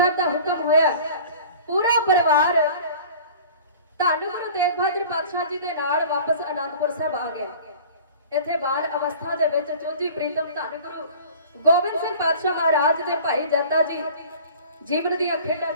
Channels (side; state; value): both; inverted; correlation -0.44